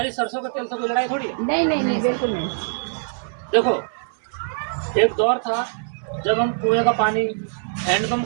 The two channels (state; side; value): silent; left; 60 dB below the other